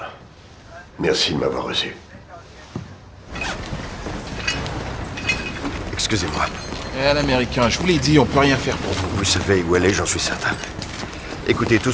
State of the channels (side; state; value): both; identical; correlation 1.00